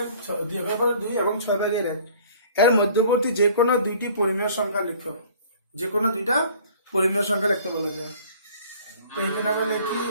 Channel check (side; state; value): both; inverted; correlation -0.52